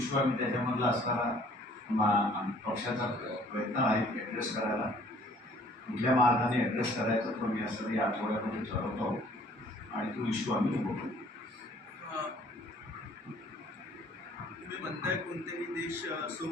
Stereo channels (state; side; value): normal; both; correlation 0.56